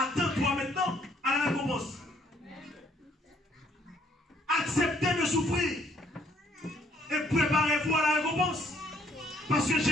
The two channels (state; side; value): normal; both; correlation 0.65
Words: maintenant à la récompense. Acceptez de souffrir. Et préparez-vous à la récompense. Parce que